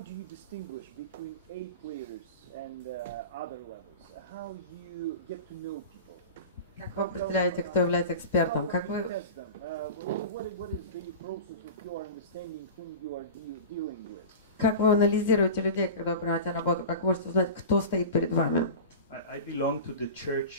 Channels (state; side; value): inverted; both; correlation -0.31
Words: do you distinguish between A players and other levels? How you get to know people? Как вы определяете, кто является экспертом? Как вы... What is the process of your understanding whom you are dealing with? Как вы анализируете людей, когда вы принимаете работу? Как вы можете узнать, кто стоит перед вами? I belong to the